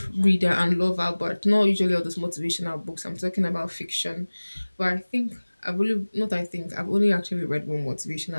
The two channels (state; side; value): inverted; both; correlation -1.00